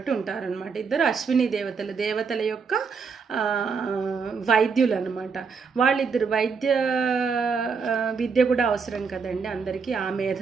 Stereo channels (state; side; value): quieter; left; 5.5 dB